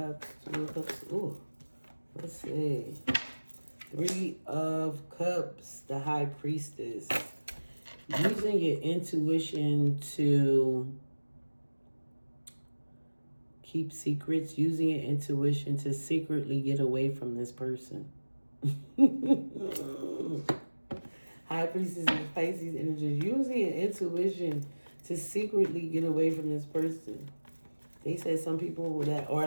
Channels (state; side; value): inverted; both; correlation -1.00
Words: Two of Cups. Ooh, let's see. Three of Cups, the High Priestess. Using your intuition to keep secrets, using your intuition to secretly get away from this person. High Priestess and Pisces energy. Using your intuition to secretly get away from this person. They said some people that